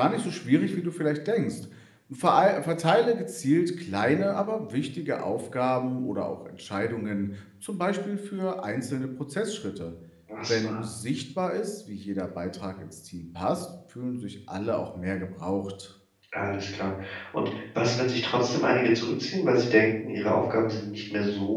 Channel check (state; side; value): identical; both; correlation 1.00